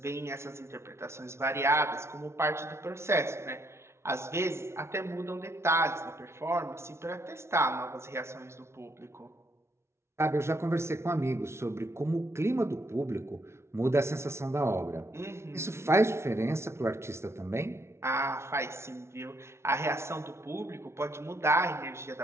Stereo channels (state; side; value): late; left; 0.13 ms